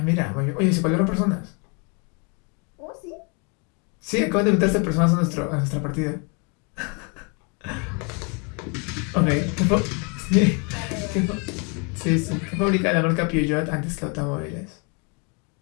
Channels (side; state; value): right; quieter; 34.0 dB